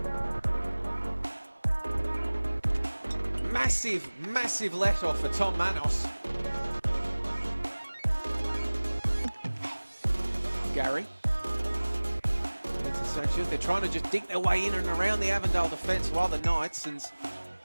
Massive let-off for Tom Manos. Gary. Into Sanchez. They're trying to just dig their way in and around the Avondale defence while the Knights, and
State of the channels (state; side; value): inverted; both; correlation -1.00